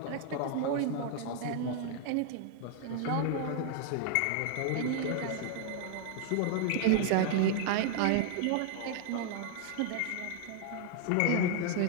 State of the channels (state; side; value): different; both; correlation 0.00